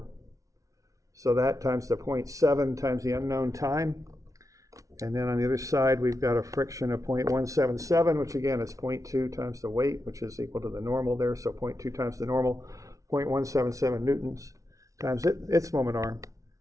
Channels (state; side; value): late; left; 0.16 ms